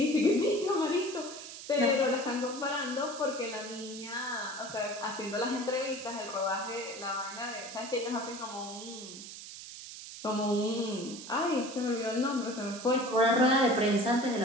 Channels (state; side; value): noise; right; hiss, 12 dB below the sound